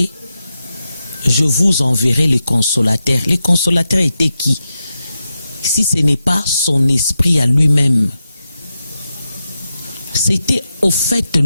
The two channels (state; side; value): inverted; both; correlation -0.89